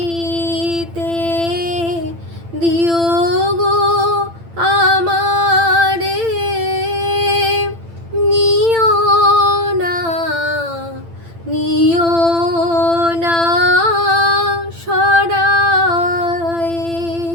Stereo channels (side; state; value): left; late; 8.9 ms